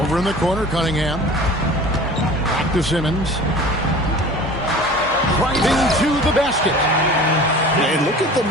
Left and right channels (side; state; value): both; normal; correlation 0.41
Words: in the corner, Cunningham. Back to Simmons. Driving to the basket. And look at the